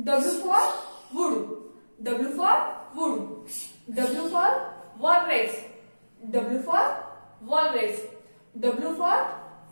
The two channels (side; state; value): both; inverted; correlation -1.00